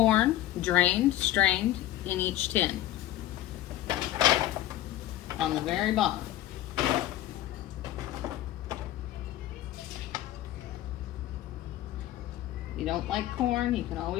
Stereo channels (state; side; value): quieter; right; 14.0 dB